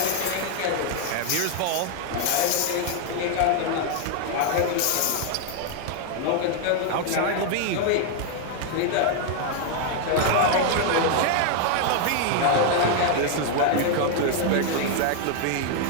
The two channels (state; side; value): different; both; correlation 0.00